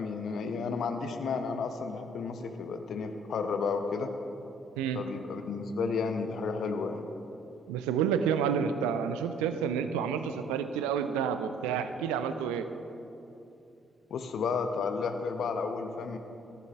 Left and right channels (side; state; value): both; normal; correlation 0.53